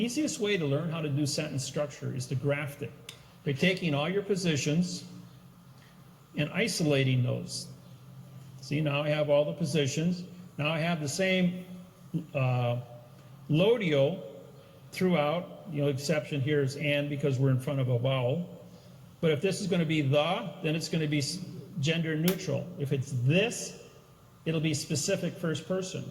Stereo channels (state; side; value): identical; both; correlation 1.00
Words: way to learn how to do sentence structure is to graft it by taking all your positions and isolating those. See, now I have all the positions. Now I have the same lodio throughout. The only exception here is and, because we're in front of a vowel. But if this is going to be the, then it's going to be gender neutral. If it's this, it'll be specific first person.